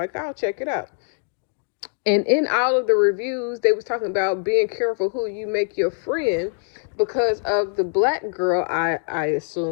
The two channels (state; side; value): silent; right; 58 dB below the other